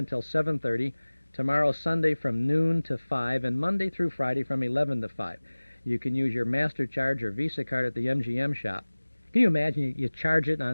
7:30, tomorrow Sunday from noon to 5, and Monday through Friday from 11 to 5. You can use your Master Charge or Visa card at the MGM shop. Can you imagine you charge it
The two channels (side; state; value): both; inverted; correlation -1.00